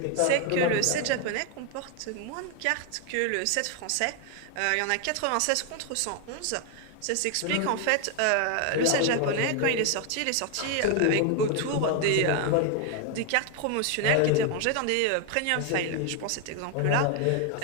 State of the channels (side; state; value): both; different; correlation 0.01